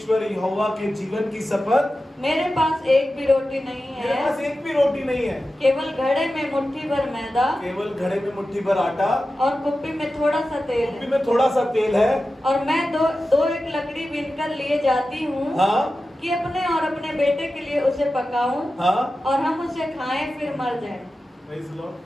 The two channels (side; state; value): both; normal; correlation 0.93